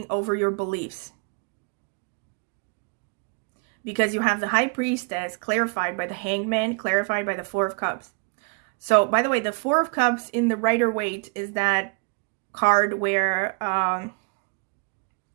over your beliefs. Because you have the High Priestess clarified by the Hanged Man, clarified by the Four of Cups. So, by the way, the Four of Cups in the Rider-Waite is that card where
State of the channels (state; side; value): quieter; left; 33.6 dB